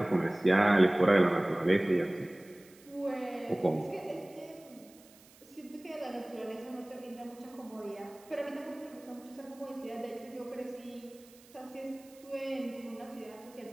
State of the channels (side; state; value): right; noise; hiss, 25 dB below the sound